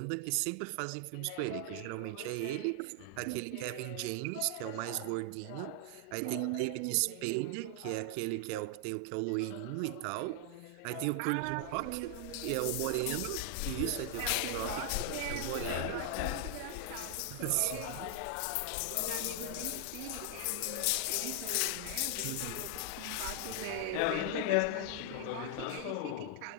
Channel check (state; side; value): different; both; correlation 0.00